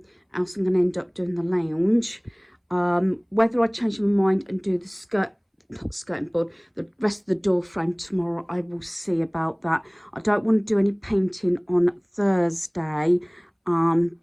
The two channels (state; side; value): identical; both; correlation 1.00